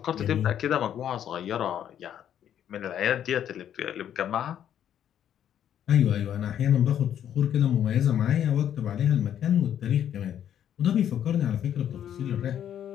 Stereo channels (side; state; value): right; quieter; 10.0 dB